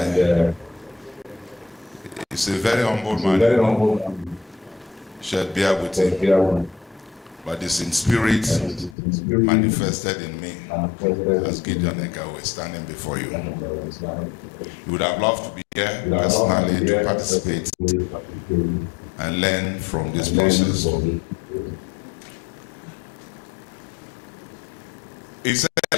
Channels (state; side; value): drops out; right; at 9.0 s